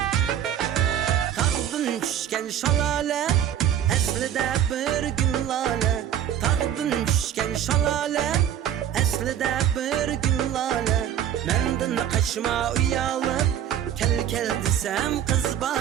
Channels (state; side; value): quieter; left; 10.1 dB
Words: Tağdın düşken şalale, aslida bir gül lale. Tağdın düşken şalale, aslida bir gül lale. Menden kaçma uyalıp, kel kel desem kız